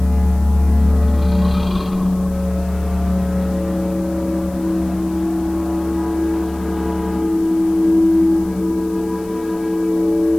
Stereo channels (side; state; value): left; noise; hiss, 24 dB below the sound